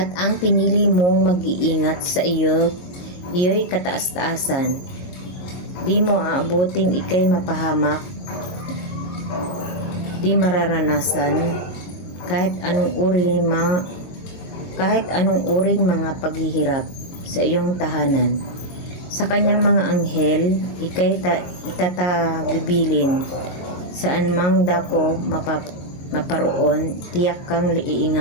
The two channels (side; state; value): right; late; 22 ms